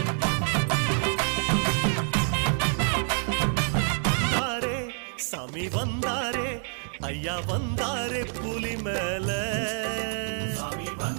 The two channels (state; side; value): silent; left; 60 dB below the other